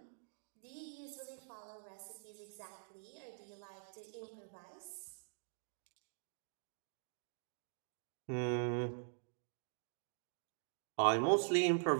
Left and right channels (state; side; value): silent; left; digital silence